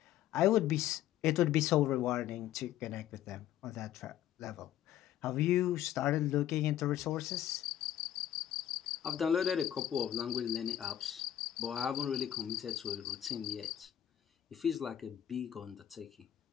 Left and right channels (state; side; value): quieter; right; 11.6 dB